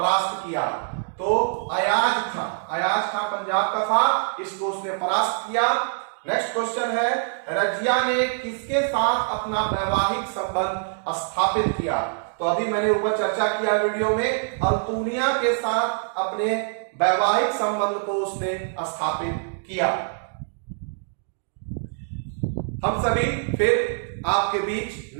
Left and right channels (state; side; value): silent; left; digital silence